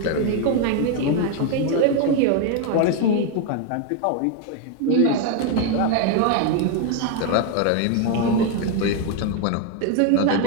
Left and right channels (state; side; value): different; both; correlation 0.01